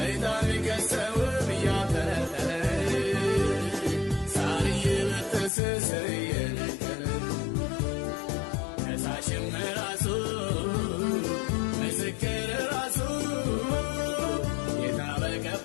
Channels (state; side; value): drops out; right; at 5.5 s